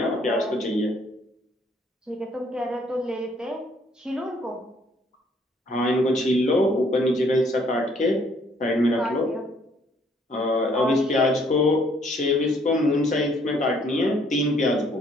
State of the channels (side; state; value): both; normal; correlation 0.64